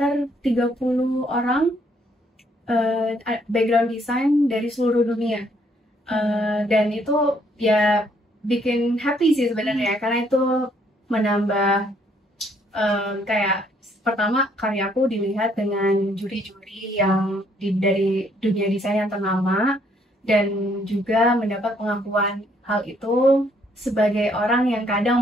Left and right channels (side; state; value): both; normal; correlation 0.68